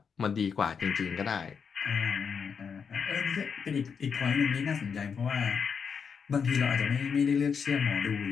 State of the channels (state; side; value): quieter; right; 6.4 dB